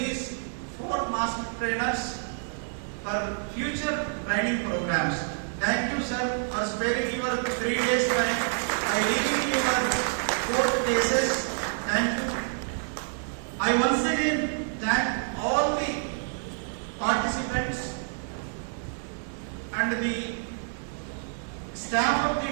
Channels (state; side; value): silent; left; digital silence